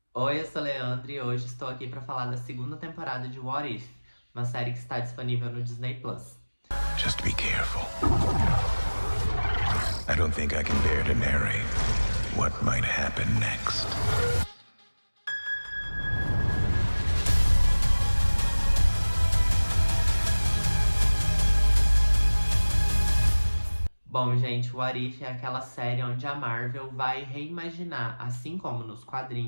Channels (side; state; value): both; inverted; correlation -1.00